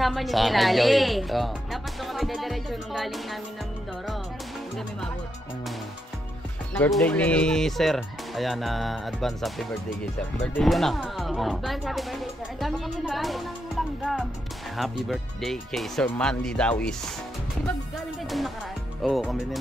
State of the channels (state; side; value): normal; both; correlation 0.82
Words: niyo Sa si akin, Lali. Joy. Oo. Dapat doon kami dediretso nung galing namin ng Mindoro. Hindi kami mabot. Birthday ni Sir. Ayan, advance happy birthday kay Sir. Birthday yun ah. Oh. Advance happy birthday, Sir. Ang dami kami nagkaroon ng langgam. Happy birthday kay Sir Mandy Dawis. Di ba galing kayo doon nakaraan? Oo, kami din